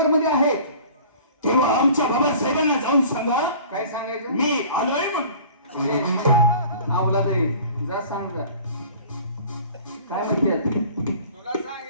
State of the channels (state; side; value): inverted; both; correlation -0.46